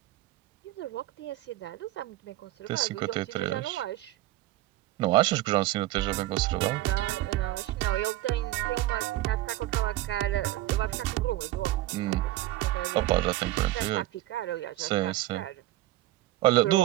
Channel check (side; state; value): left; quieter; 16.1 dB